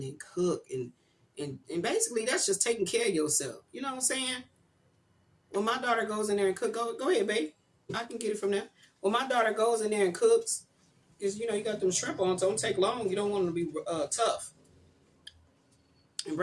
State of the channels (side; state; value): both; identical; correlation 1.00